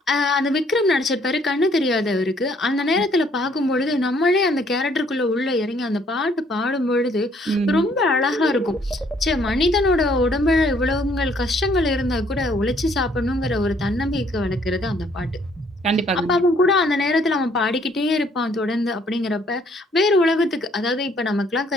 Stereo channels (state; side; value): normal; both; correlation 0.64